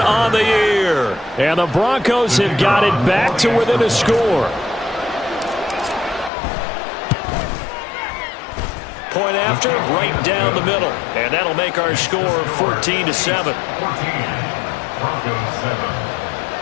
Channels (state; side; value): drops out; right; at 6.3 s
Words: on the year. And the Broncos have got it back to within a score. Point after, right down the middle. And that'll make our score 14-7.